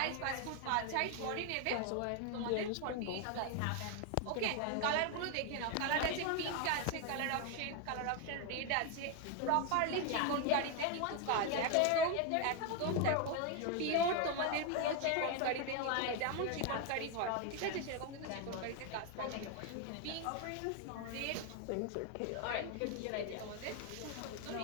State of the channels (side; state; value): both; different; correlation 0.01